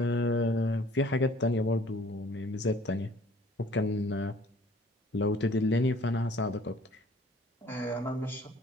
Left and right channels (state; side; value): normal; both; correlation 0.54